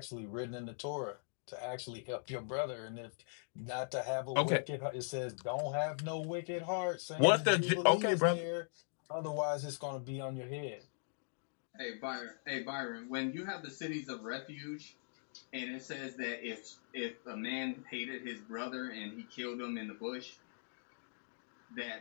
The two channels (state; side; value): silent; right; digital silence